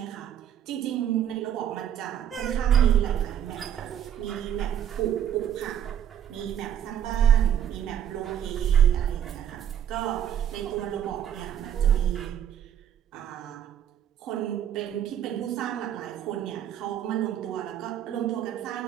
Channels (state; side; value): quieter; left; 9.7 dB